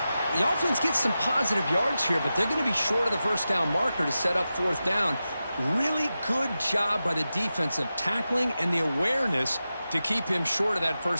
The offense gets some positive yards here, but they're going to be short of the first down marker to set up fourth down. Really good job by the defensive tackling and the awareness to keep him short of that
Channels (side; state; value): both; inverted; correlation -0.92